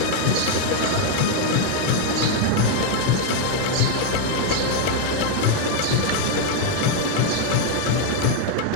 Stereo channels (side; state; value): both; different; correlation 0.00